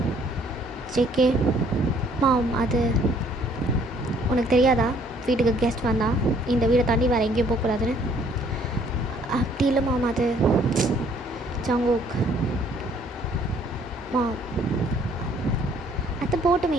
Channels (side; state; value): both; normal; correlation 0.61